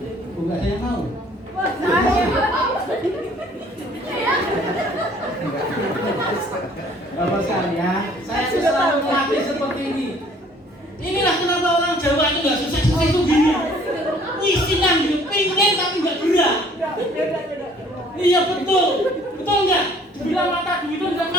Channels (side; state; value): both; normal; correlation 0.56